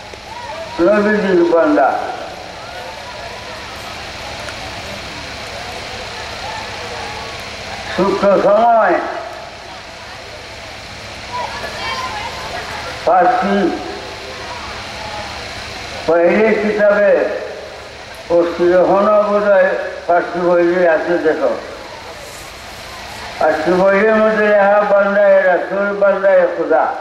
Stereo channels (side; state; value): both; identical; correlation 1.00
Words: নবীজির বান্দা, সূক্ষ্ম সময় ফার্সি পহলে কিতাবে পড়ছি, এখনো বোধ হয় ফার্সি বইলে আছে। দেখো ফার্সি বইয়ের মধ্যে লেখা বান্দায়ে রাসূল বান্দায়ে খুদা,